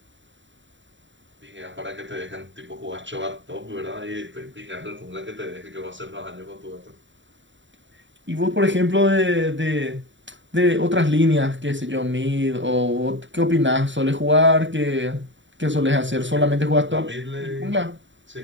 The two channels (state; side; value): late; left; 0.54 ms